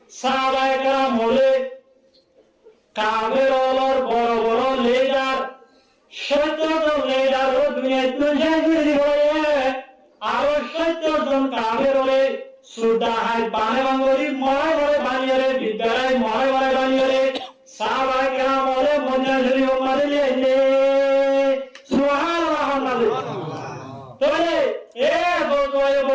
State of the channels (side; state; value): both; identical; correlation 1.00